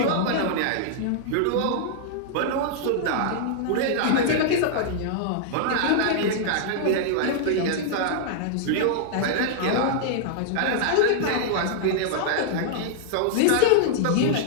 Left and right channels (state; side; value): different; both; correlation -0.01